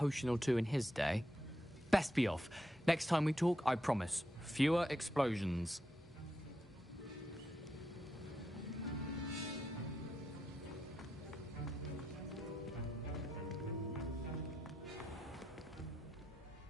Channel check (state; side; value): normal; both; correlation 0.84